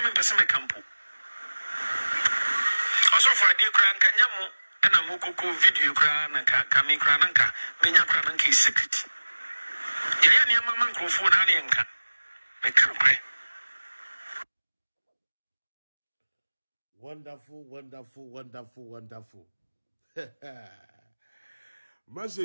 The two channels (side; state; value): both; inverted; correlation -1.00